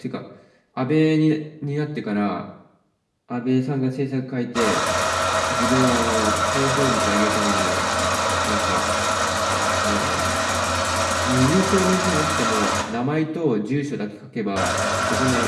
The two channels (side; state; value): both; identical; correlation 1.00